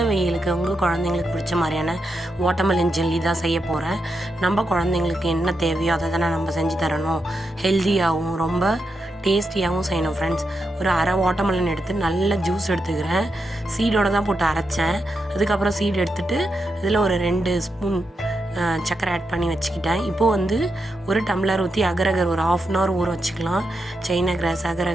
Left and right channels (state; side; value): normal; both; correlation 0.85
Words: வெயிலுக்கு உங்கள் குழந்தைங்களுக்கு பிடிச்ச மாதிரியான வாட்டர்மெலன் ஜெல்லி தான் செய்ய போகிறேன். நம்ம குழந்தைங்களுக்கு என்ன தேவையோ அதை தானே நம்ம செஞ்சு தரணும். ஹெல்த்தியாகவும் ரொம்ப டேஸ்டியாகவும் செய்யணும் ஃப்ரெண்ட்ஸ். ஒரு அரை வாட்டர்மெலன் எடுத்து நல்ல ஜூஸ் எடுத்துக்கிறேன். சீடோடு தான் போட்டு அரைச்சேன். அதுக்கப்புறம் சீடு எடுத்துகிட்டு இதில் ஒரு 2 ஸ்பூன் சர்க்கரை ஆட் பண்ணி வச்சுக்கிட்டேன். இப்போது ஒரு டம்ளர் ஊற்றி அகரகர் ஒரு 1/2 hour ஊற வச்சுக்கலாம். சைனா கிராஸ்,